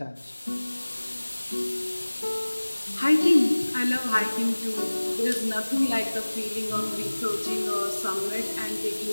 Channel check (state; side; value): inverted; both; correlation -1.00